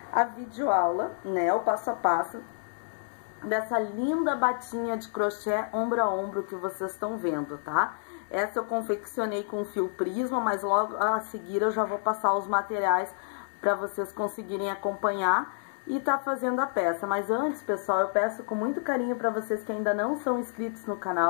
a videoaula, né, o passo a passo dessa linda batinha de crochê ombro a ombro que vocês estão vendo, tá? Essa eu confeccionei com fio prisma, mas logo a seguir eu já vou passar os materiais para vocês conseguirem acompanhar e tá fazendo a peça. Mas antes, pessoal, eu peço com muito carinho para vocês que ainda não são inscritos no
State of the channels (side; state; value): right; silent; digital silence